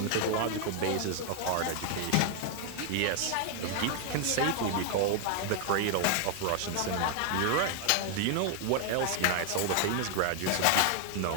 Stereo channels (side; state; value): both; different; correlation 0.00